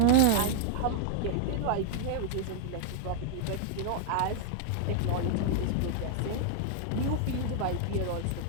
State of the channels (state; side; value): different; both; correlation 0.00